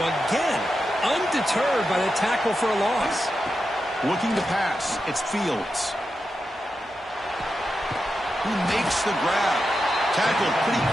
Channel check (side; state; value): both; normal; correlation 0.89